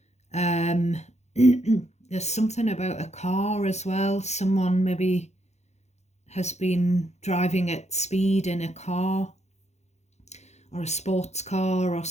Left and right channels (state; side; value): late; right; 0.32 ms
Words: There's something about a car as well. Someone maybe has been driving at speed in a car, or a sports car or